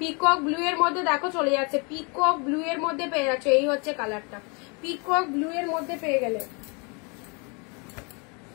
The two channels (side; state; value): right; quieter; 32.7 dB